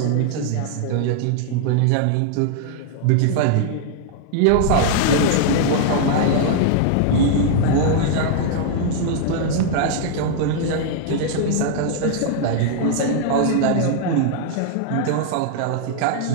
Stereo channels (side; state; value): both; different; correlation -0.01